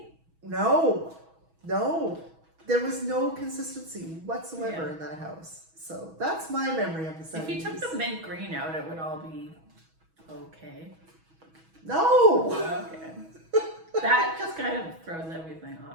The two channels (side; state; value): left; late; 6.2 ms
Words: No. There was no consistency whatsoever in that house. So that's my memory of the 70s. If you took the mint green out, it would all be okay. No! Okay. That just kind of throws everything